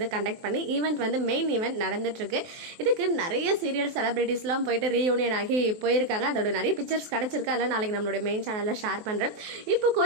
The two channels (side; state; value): left; late; 23 ms